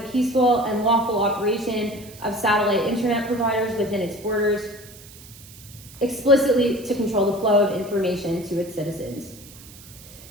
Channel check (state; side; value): noise; right; hiss, 19 dB below the sound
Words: and lawful operation of satellite internet providers within its borders, explicitly to control the flow of information to its citizens.